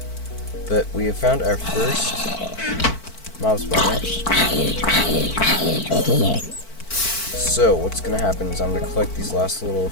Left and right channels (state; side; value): late; right; 4.5 ms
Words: But we have found our first mob spawner. So what's gonna happen is I'm gonna collect these last little